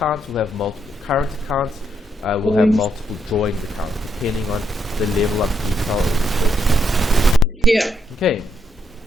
we'll have multiple current accounts, we'll have multiple drawings accounts, depending on the level of detail of the business. Yeah. Okay.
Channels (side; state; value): both; normal; correlation 0.76